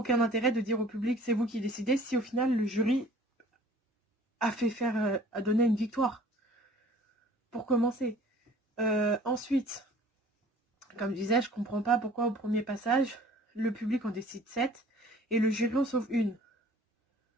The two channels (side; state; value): both; normal; correlation 0.51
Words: intérêt de dire au public, c'est vous qui décidez, si au final, le jury a donné une victoire. Pour commencer. Ensuite, comme je disais, je comprends pas pourquoi au premier passage, le public en décide 7 et le jury en sauve une.